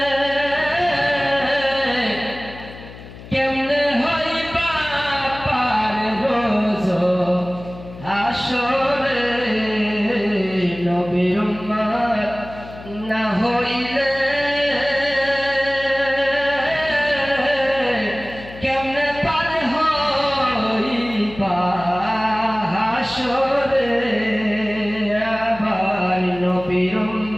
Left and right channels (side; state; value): left; noise; hum, 16 dB below the sound